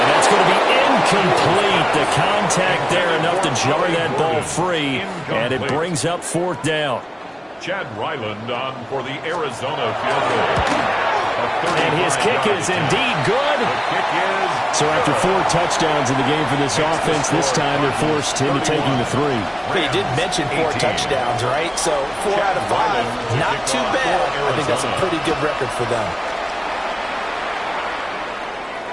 that's going to be incomplete. The contact there enough to jar that ball free. And it brings up fourth down. Chad Ryland on for the Arizona field goal. And his kick is indeed good. So after 4 touchdowns in the game for this offense, this time they're forced into taking the 3. But you did mention 4 touchdowns, right? So 4 out of 5, not too bad. I think that's a pretty good record for them.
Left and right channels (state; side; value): identical; both; correlation 1.00